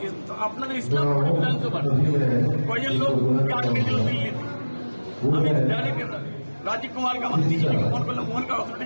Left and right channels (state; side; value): inverted; both; correlation -1.00